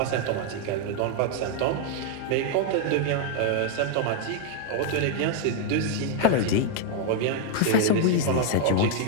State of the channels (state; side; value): different; both; correlation 0.00